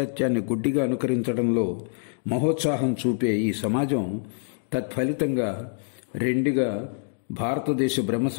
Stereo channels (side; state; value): right; silent; digital silence